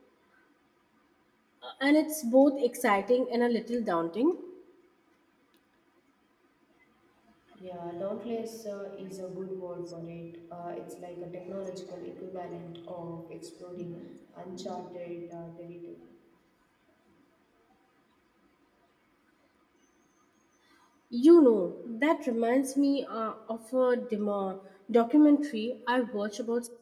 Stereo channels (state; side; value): identical; both; correlation 1.00